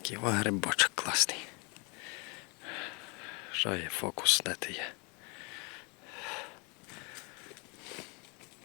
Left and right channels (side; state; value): right; quieter; 31.8 dB